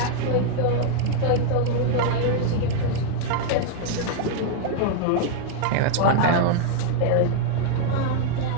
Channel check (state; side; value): different; both; correlation 0.00